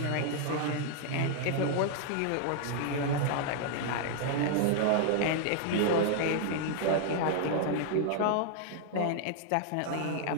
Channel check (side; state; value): both; different; correlation 0.00